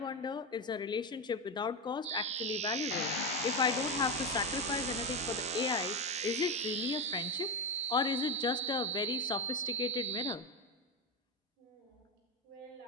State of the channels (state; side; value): normal; both; correlation 0.14